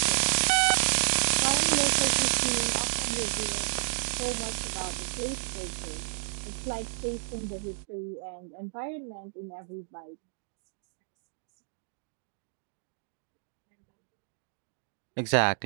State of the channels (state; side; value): silent; left; digital silence